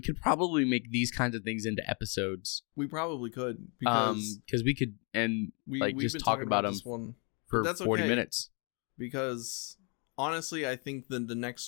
could probably make these kinds of things into episodes. We probably could, because we could we've just been talk about them this one for 40 minutes. Because honestly, I think the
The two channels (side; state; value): right; quieter; 35.5 dB